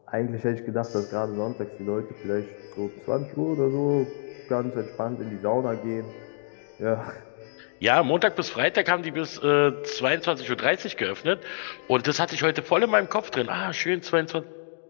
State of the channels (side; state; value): right; silent; digital silence